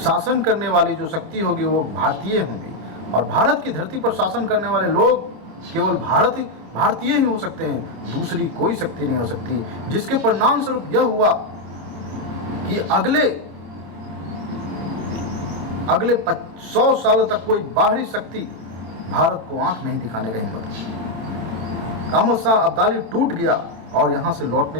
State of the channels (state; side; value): late; left; 27 ms